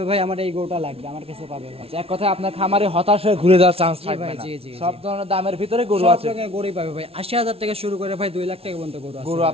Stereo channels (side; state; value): left; late; 0.28 ms